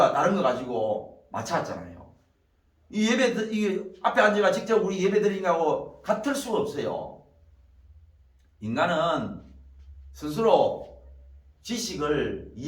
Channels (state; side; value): identical; both; correlation 1.00